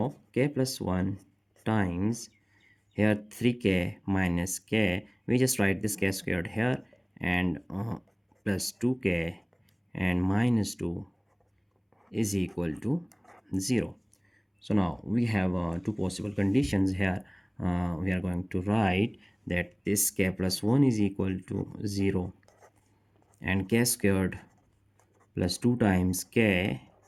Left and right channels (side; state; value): both; identical; correlation 1.00